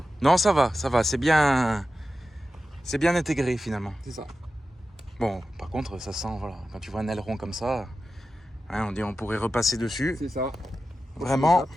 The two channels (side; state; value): both; normal; correlation 0.92